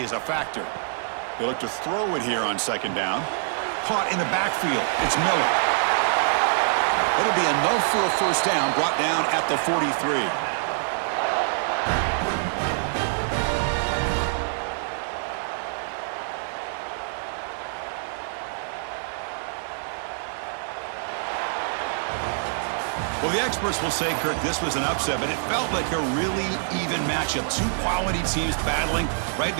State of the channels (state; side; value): silent; left; digital silence